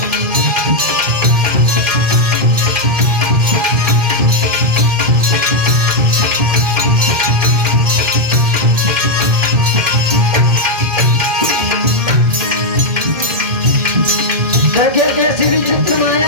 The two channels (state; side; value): late; left; 2.5 ms